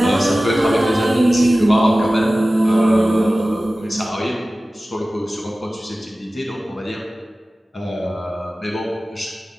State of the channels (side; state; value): both; normal; correlation 0.96